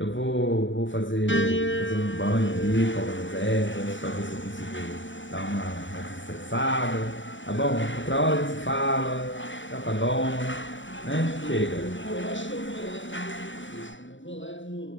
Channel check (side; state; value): right; late; 0.55 ms